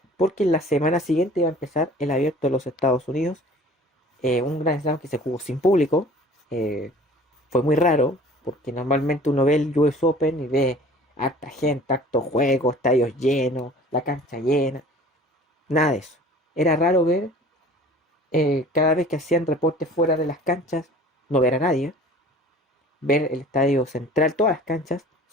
porque la semana siguiente iba a empezar el abierto de los Estados Unidos, un Grand Slam que se jugó sin público. Fue muy raro, porque normalmente uno ve el US Open y ve harta gente, harto juego, estadios llenos, la cancha llena. Nada de eso. Era raro ver, cada vez que hacían reportes fuera de las canchas, no ver a nadie. Ver el estadio central, todas las canchas,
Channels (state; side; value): normal; both; correlation 0.47